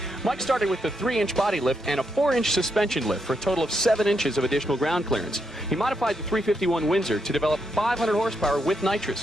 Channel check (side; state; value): both; normal; correlation 0.80